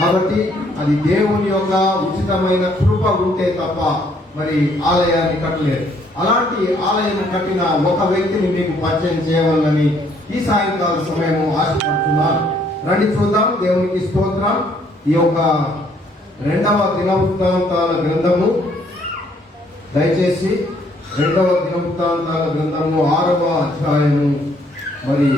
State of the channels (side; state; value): both; normal; correlation 0.66